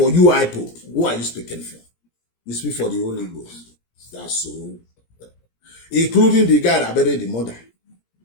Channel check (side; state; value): right; late; 17 ms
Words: You IPOB. Who are you speaking for? You speak for the Holy Ghost. That's so. Including the guy that buried the mother.